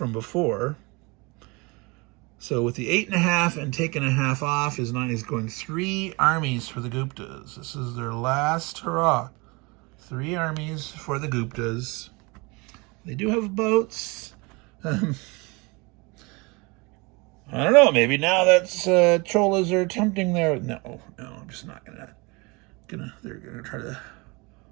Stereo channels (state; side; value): quieter; left; 27.1 dB